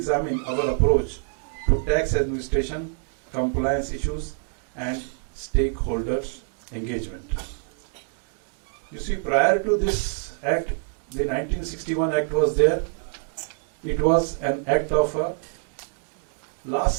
our approach to tax administration, compliance issues, and stakeholders' engagement. You see, prior to this act, the 1961 Act was there. It was an act of a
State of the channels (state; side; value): silent; left; 61 dB below the other